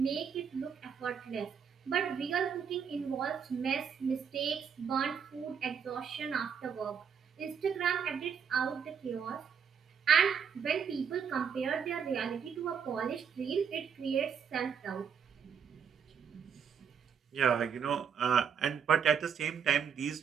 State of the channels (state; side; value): quieter; left; 7.1 dB